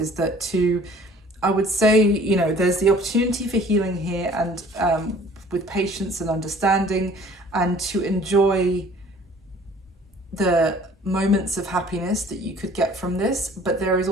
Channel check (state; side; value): normal; both; correlation 0.52